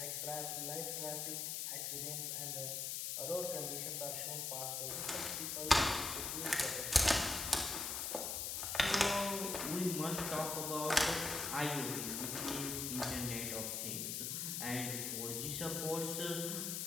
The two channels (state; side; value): noise; left; hiss, 2 dB below the sound